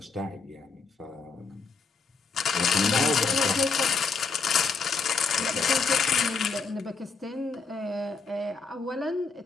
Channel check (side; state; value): right; quieter; 4.8 dB